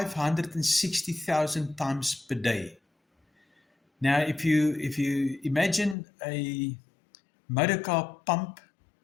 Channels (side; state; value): right; drops out; at 6.0 s